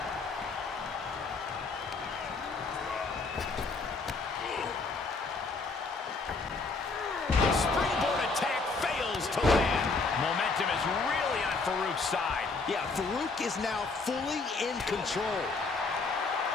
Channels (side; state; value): right; quieter; 4.0 dB